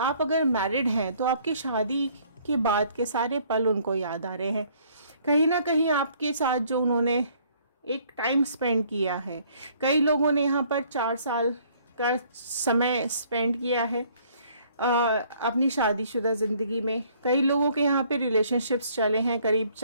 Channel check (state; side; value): inverted; both; correlation -0.61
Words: अगर मैरिड हैं तो आपकी शादी के बाद के सारे पल उनको याद आ रहे हैं, कहीं ना कहीं आपके साथ जो उन्होंने एक टाइम स्पेंड किया है। कई लोगों ने यहाँ पर 4 साल का समय स्पेंड किया है अपनी शादीशुदा ज़िंदगी में। कई लोगों के यहाँ पे रिलेशनशिप्स चले हैं करीब